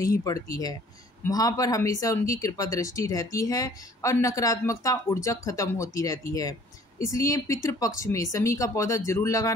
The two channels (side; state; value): both; normal; correlation 0.55